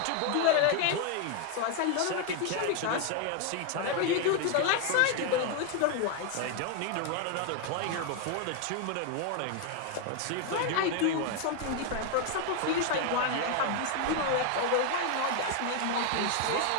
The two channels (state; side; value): different; both; correlation 0.01